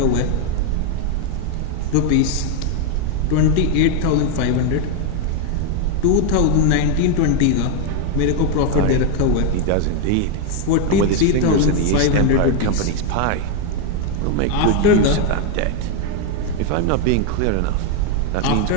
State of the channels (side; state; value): both; different; correlation 0.01